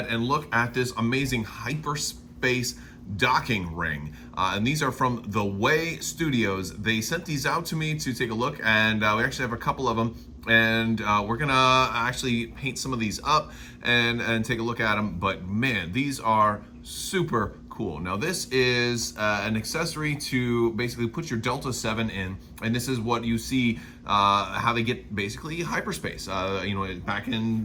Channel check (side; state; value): both; identical; correlation 1.00